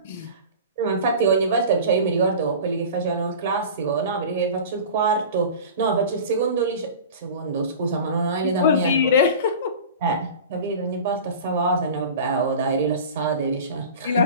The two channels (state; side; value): inverted; both; correlation -0.36